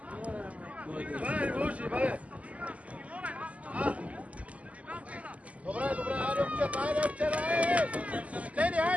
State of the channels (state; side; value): late; left; 0.069 ms